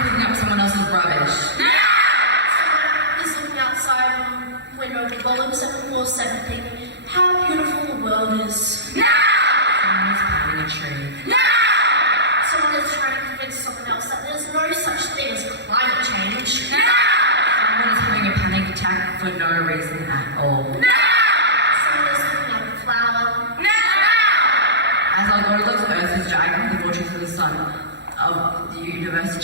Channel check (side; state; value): left; late; 0.51 ms